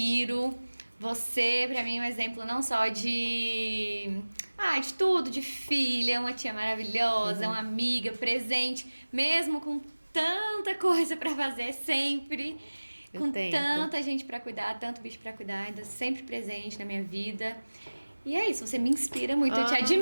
Você, pra mim, é um exemplo não só de tudo, de filha, uma tia maravilhosa, uma amiga, presente, mesmo com tanta coisa pra fazer sempre, Eu com tento. tanta gente pra cuidar, tanto bicho pra cuidar, ainda sempre presente na minha vida. E é isso, você me inspira muito, eu te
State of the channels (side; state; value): both; inverted; correlation -1.00